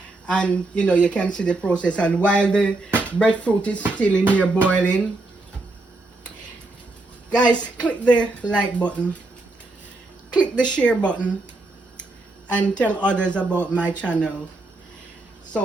And you know, you can see the process. And while the breadfruit is still in here boiling, guys, click the like button, click the share button, and tell others about my channel.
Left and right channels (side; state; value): left; quieter; 3.0 dB